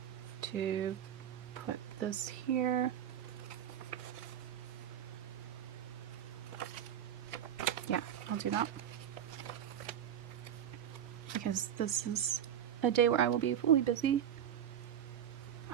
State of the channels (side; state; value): left; quieter; 9.6 dB